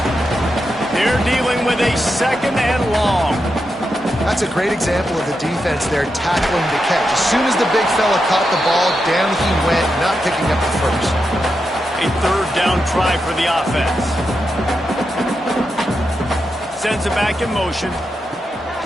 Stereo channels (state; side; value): normal; both; correlation 0.86